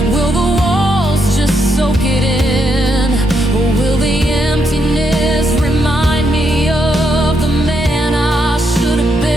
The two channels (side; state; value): both; normal; correlation 0.78